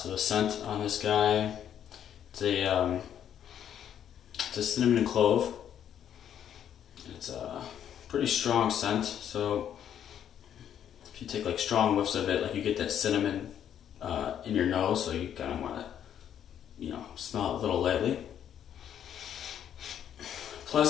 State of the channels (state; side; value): quieter; right; 9.6 dB